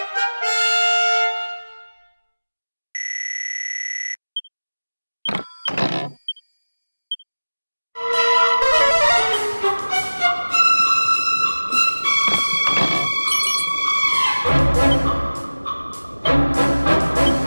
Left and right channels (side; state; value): both; inverted; correlation -1.00